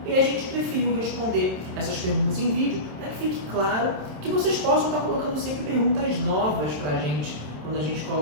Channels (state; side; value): late; left; 27 ms